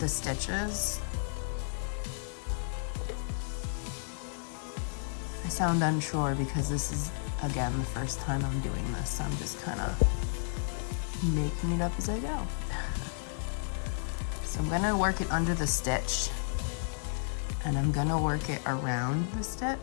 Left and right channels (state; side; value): silent; right; 56 dB below the other